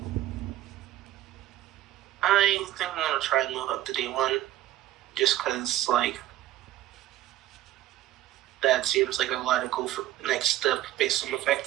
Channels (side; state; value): left; quieter; 14.3 dB